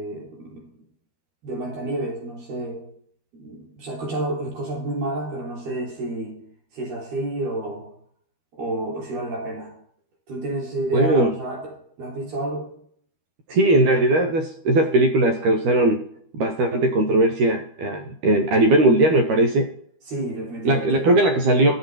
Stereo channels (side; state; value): left; late; 13 ms